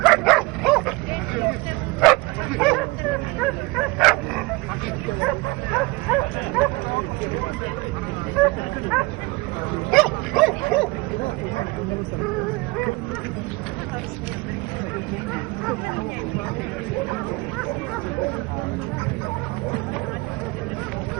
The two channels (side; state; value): left; quieter; 24.3 dB